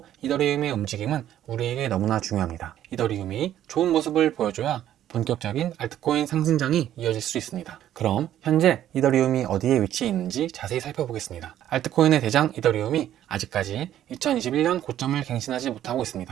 이더리움의 움직임은 우리에게 너무나 중요합니다. 이더리움이 좋은 모습을 보여줘야 본격적인 알트코인 상승장이 이어질 수 있습니다. 그럼 현재 이더리움이 어디에 위치해 있는지 자세히 살펴보겠습니다. 알트코인의 대장 이더리움이 아직까지 2021년 고점을 갱신하지 못하고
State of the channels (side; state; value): left; quieter; 11.7 dB